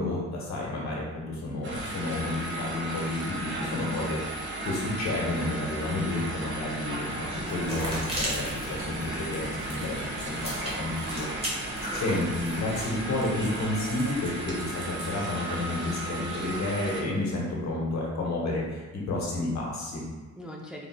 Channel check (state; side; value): normal; both; correlation 0.38